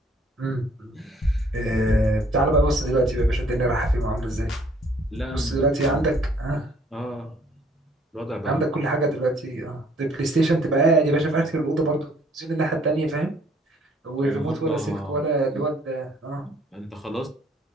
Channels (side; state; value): both; normal; correlation 0.60